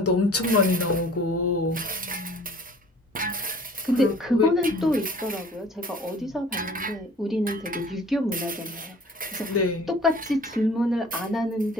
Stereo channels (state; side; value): normal; both; correlation 0.49